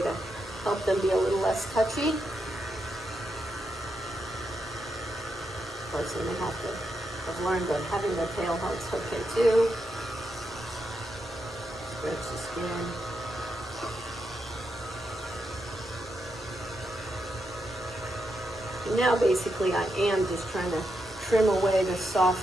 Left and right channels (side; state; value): both; normal; correlation 0.84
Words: to help them be a little less touchy. Of course, then they have to I've learned that having the tail helps okay too. Stretch the skin. And now basically I am just trying to trim away the soft